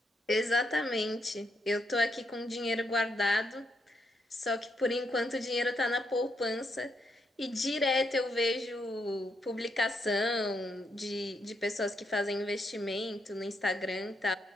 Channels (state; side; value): normal; both; correlation 0.78